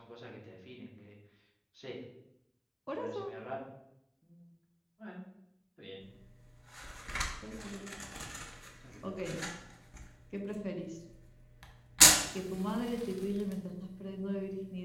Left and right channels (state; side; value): identical; both; correlation 1.00